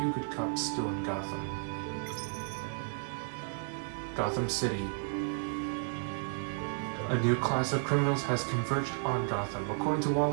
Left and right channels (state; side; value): silent; left; digital silence